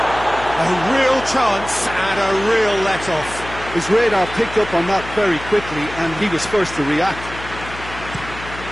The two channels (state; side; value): noise; left; hum, 13 dB below the sound